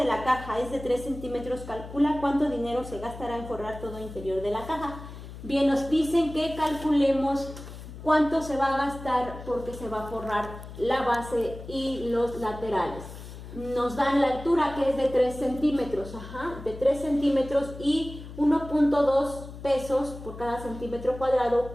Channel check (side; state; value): left; noise; hum, 13 dB below the sound